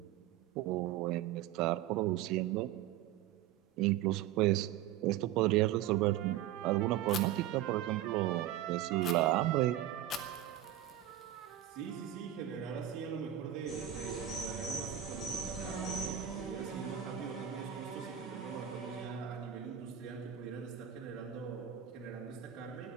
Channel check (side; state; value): left; quieter; 11.6 dB